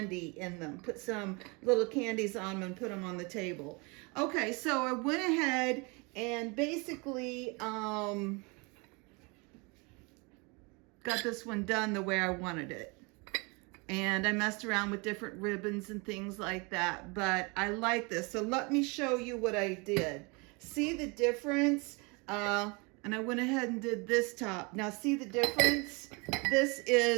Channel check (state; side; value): quieter; left; 29.3 dB